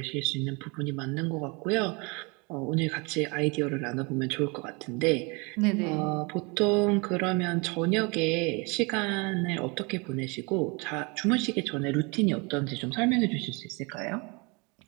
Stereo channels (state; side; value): quieter; left; 29.4 dB